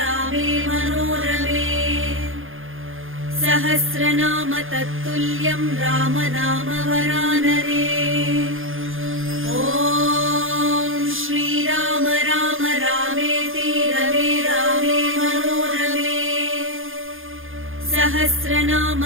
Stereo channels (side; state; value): left; late; 0.59 ms